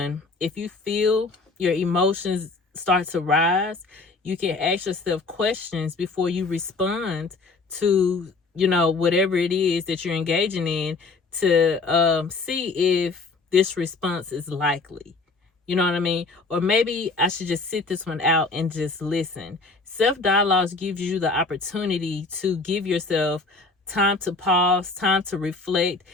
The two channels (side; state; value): right; quieter; 3.8 dB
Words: if you feel your emotions start to rise, you can ask yourself questions before you respond to, whatever it is that you're engaging in, to see if this response is likely. You know what I mean? Or maybe I should just sit this one out and just listen. Self dialogues gives you the opportunity to give yourself time to pause, time to reflect,